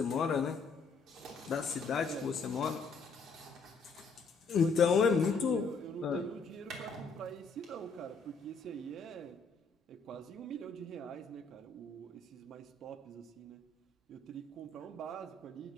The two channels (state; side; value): quieter; right; 4.3 dB